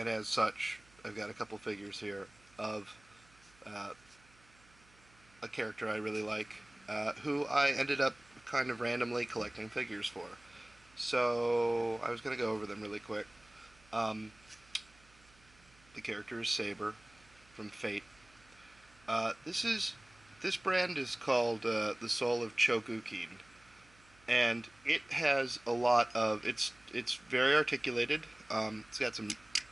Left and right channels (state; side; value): noise; right; hum, 28 dB below the sound